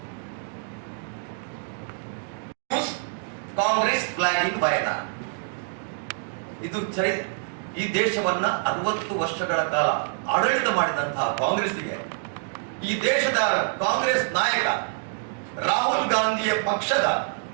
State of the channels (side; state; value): left; silent; digital silence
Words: ಕಾಂಗ್ರೆಸ್ ಫ್ಲಾಗ್ ಇನ್ ವಯನಾಡ್. ಇದು ಈ ದೇಶವನ್ನ 60 ವರ್ಷಗಳ ಕಾಲ ಆಡಳಿತ ಮಾಡಿದಂತಹ ಕಾಂಗ್ರೆಸ್ಗೆ, ಈ ದೇಶದ ಕಾಂಗ್ರೆಸ್ ನಾಯಕ ರಾಹುಲ್ ಗಾಂಧಿಯ ಪಕ್ಷದ